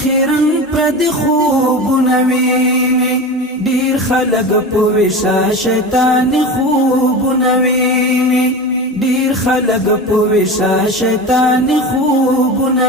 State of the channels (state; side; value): normal; both; correlation 0.28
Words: خیرن پر د خوبونه ویني ډیر خلق په وشا شیطان خوبونه ویني ډیر خلق په وشا شیطان خوبونه